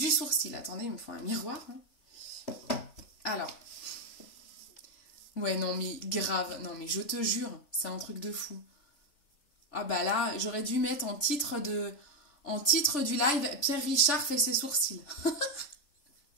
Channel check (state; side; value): late; right; 3.4 ms